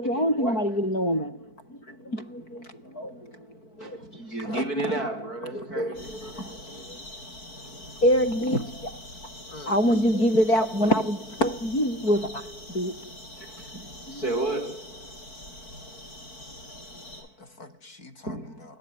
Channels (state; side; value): late; right; 4.5 ms